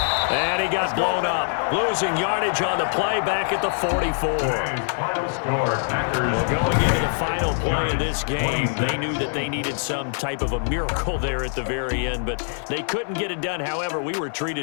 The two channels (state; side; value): silent; right; digital silence